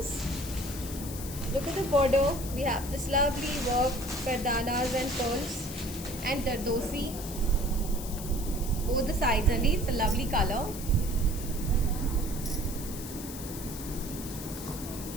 Look at the border. We have this lovely work, gardanas and pearls and dardosi. Both the sides only. It's a lovely color.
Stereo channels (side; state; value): left; noise; hiss, 11 dB below the sound